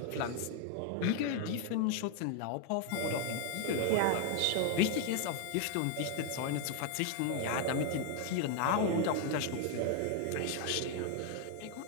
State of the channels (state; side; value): different; both; correlation 0.00